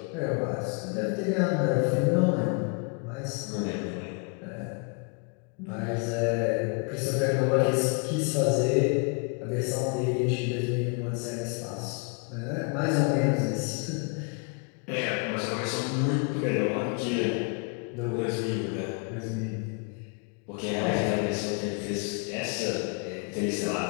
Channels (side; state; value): right; quieter; 36.5 dB